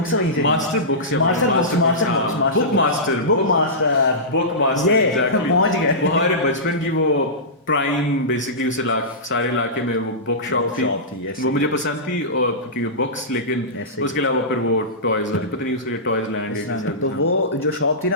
वहीं से ली। मास्टर बुक्स या master books, master books master books, हाँ master book master book master. Book master ये एग्जैक्टली। पहुंच वो गए। हमारे बचपन की वो प्राइम बेसिकली उस इलाके सारे इलाके में वो बुक शॉप थी। शॉप थी ऐसे वो ही। मुझे पसंद थी और क्योंकि बुक्स लेकिन ऐसे उसके ही अलावा फिर वो टॉयज वाली पता नहीं उसके टॉयज लैंड इस या तरह किसी का। तो हाँ। वो जो शॉप थी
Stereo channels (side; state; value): both; normal; correlation -0.18